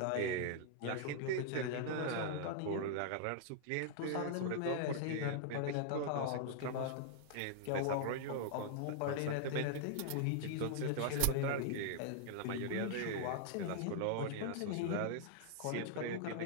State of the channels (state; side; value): different; both; correlation -0.01